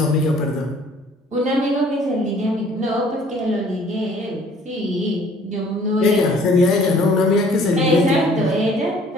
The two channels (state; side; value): normal; both; correlation 0.55